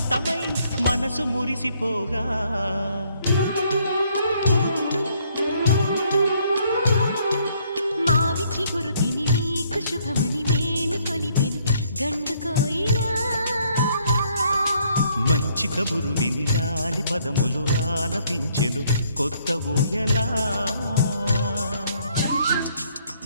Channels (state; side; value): inverted; both; correlation -0.67